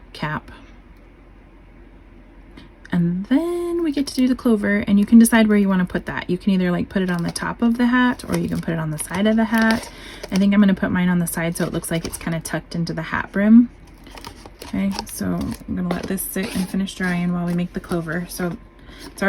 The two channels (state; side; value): identical; both; correlation 1.00